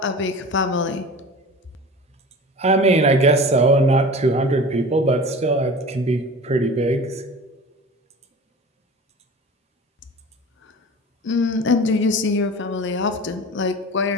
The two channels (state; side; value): normal; both; correlation 0.37